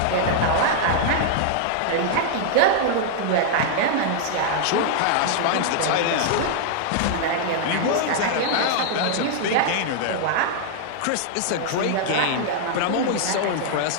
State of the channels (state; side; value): different; both; correlation -0.01